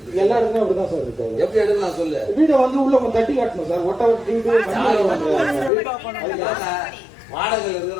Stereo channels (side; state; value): right; drops out; at 5.7 s